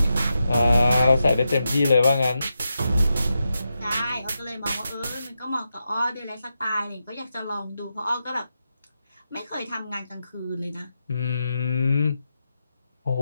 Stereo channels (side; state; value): both; inverted; correlation -0.88